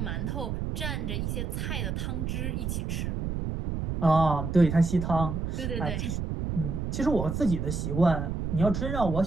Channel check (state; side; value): noise; right; rumble, 2 dB below the sound